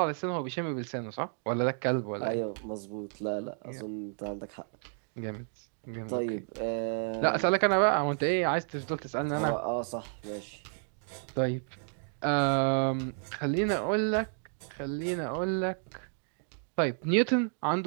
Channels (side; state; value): left; silent; 57 dB below the other